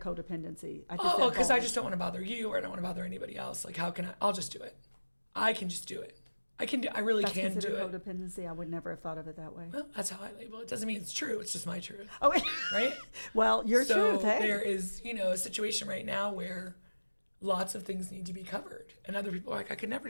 codependency? Because I just don't want to bother you, or I don't want to bother anybody else. Like, how can I? I'll just do it. I can just do it. I really That's can do considered it. codependency. I would never have thought of it that way. Well, that's how I label it. Doesn't mean it's true. It's just my truth. Oh, right. Well, your truth. Hey. There is, a situation right now where lots of things need to be covered, and other people are like, I could never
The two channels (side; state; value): both; inverted; correlation -1.00